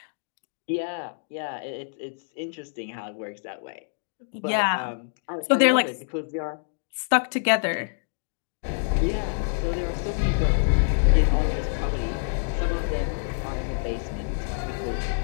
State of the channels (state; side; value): silent; right; digital silence